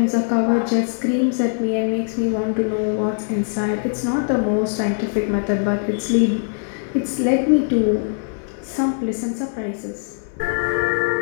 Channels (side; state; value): right; silent; 65 dB below the other